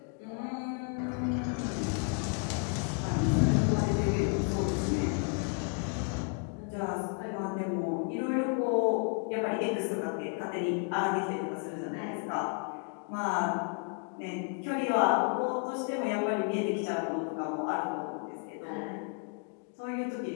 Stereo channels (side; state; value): right; quieter; 38.7 dB